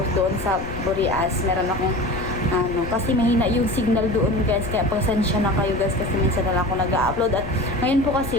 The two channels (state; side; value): noise; left; rumble, 12 dB below the sound